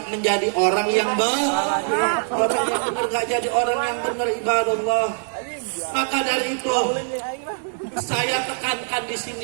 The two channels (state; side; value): silent; left; digital silence